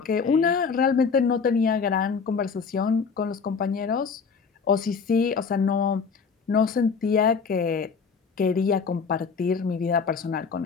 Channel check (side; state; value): right; quieter; 5.5 dB